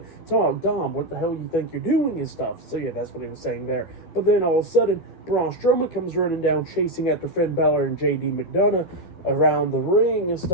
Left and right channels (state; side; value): late; right; 12 ms